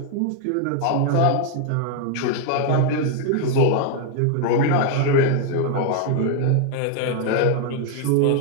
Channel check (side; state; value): both; different; correlation 0.00